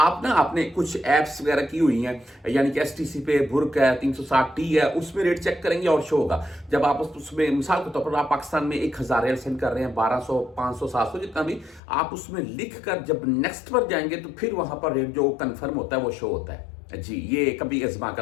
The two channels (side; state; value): right; drops out; at 11.8 s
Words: ना आपने कुछ ऐप्स वगैरह की हुई हैं, यानी कि STC पे बुर्क है, 360T है, उसमें रेट चेक करेंगे और शो होगा। जब आप उसमें मिसाल के तौर पर आप पाकिस्तान में 1000 रियाल सेंड कर रहे हैं, 1200 500 700 जितना भी, आप उसमें लिख कर जब नेक्स्ट पर जाएंगे तो फिर वहां पर रेट जो कन्फर्म होता है वो शो होता है। जी ये कभी आजमा